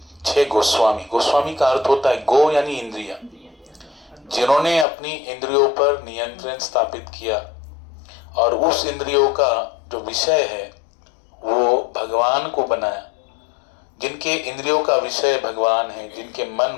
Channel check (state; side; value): drops out; right; at 4.9 s